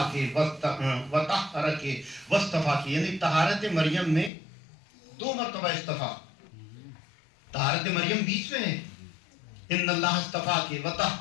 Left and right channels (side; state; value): right; drops out; at 4.3 s